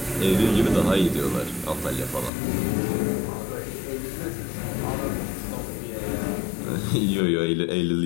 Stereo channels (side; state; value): right; drops out; at 2.3 s